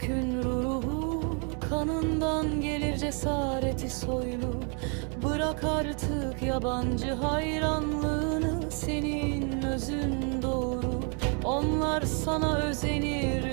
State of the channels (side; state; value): left; quieter; 38.3 dB